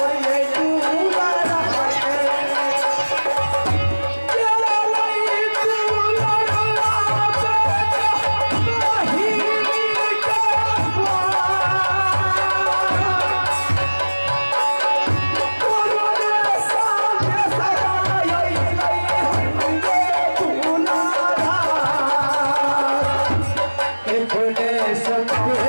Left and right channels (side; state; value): both; inverted; correlation -1.00